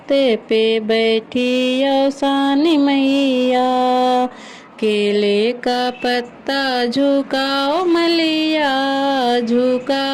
पे बैठी औसानी मैया। केले का पत्ता झुकाओ मलिया,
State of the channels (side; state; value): both; identical; correlation 1.00